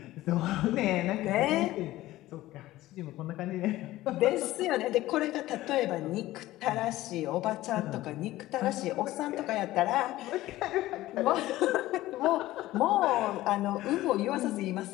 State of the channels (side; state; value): right; quieter; 16.3 dB